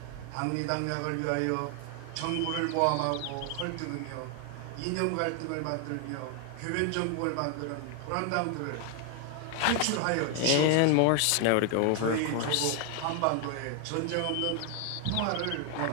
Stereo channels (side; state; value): both; different; correlation 0.01